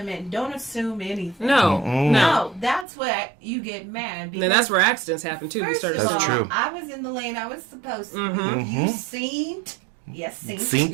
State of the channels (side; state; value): left; drops out; at 2.9 s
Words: in. Don't assume anything. No. Mm-mm. No, that's where you get mad. Then that's where accidents happen too. We First started of That's all, true. I was in the lane I was supposed to. Mhm. You seen? Yes, seen. See?